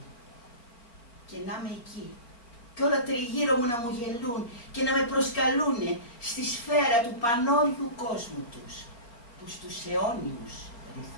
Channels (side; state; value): right; late; 4.3 ms